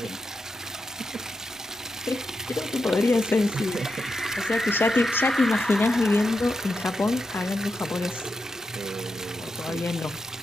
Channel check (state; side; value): normal; both; correlation 0.86